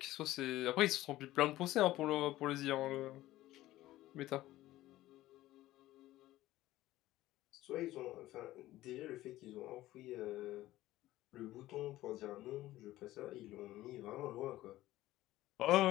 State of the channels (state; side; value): quieter; right; 15.9 dB